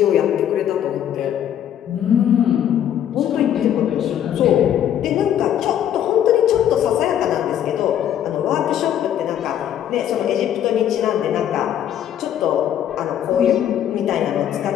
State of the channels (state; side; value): quieter; right; 10.3 dB